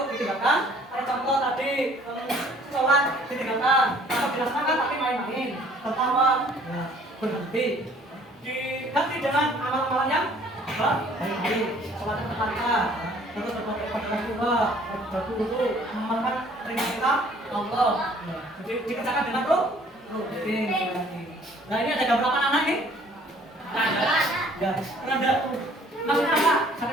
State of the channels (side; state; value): both; normal; correlation 0.56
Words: ditinggalkan. Ada contoh tadi sholat ditinggalkan atau dilaksanakan pertama, ya, berhenti. Diganti dengan amal-amalan yang baik-baik. Sholat berkali-kali, terus berbagai ibadah pula, berwudu, mengamalkan perintah Allah. Ya, jadi dikerjakan dengan rutin. Nah ini ada berapa anak nih? Ada. Ya, ada. Maksudnya apa?